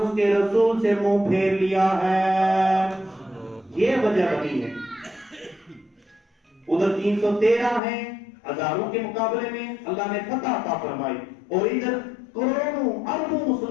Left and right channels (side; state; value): right; drops out; at 7.8 s